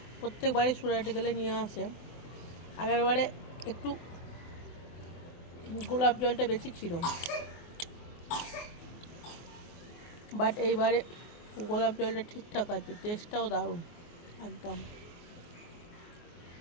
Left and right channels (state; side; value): late; right; 24 ms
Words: প্রত্যেকবারে সুরাটে গেলে নিয়ে আসে। আগেরবারে একটু গোলাপ জলটা বেশি ছিল, বাট এইবারে গোলাপ জলটা ঠিকঠাক আছে, টেস্টটাও দারুণ একদম।